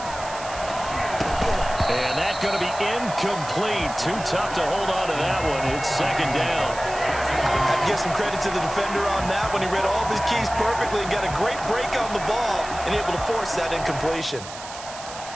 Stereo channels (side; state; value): right; noise; hiss, 13 dB below the sound